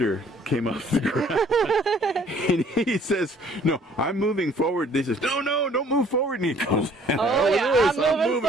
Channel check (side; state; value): both; normal; correlation 0.58